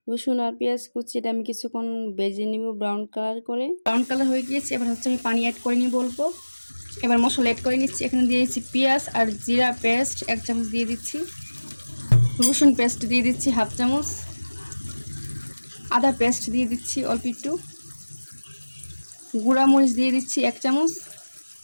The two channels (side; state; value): both; inverted; correlation -1.00